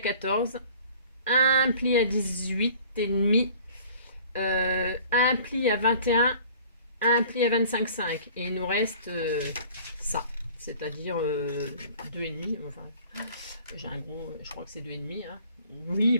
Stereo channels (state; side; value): inverted; both; correlation -0.49